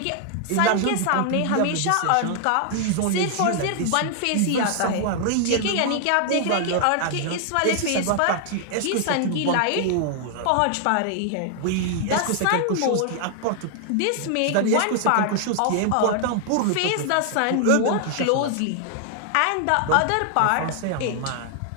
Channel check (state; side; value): different; both; correlation 0.00